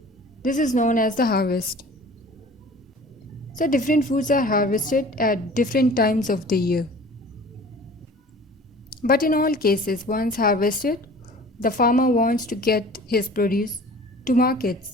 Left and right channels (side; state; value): both; normal; correlation 0.44